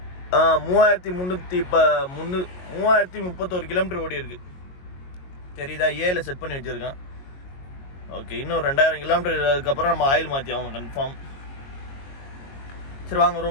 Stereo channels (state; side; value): late; right; 22 ms